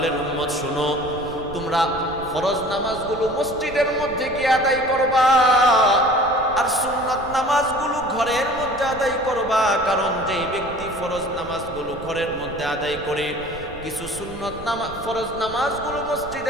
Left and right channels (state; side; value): noise; right; rumble, 16 dB below the sound